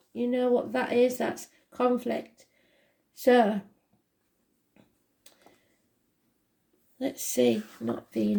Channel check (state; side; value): identical; both; correlation 1.00